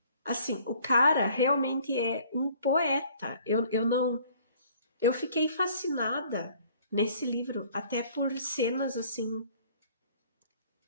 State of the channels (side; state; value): both; inverted; correlation -0.56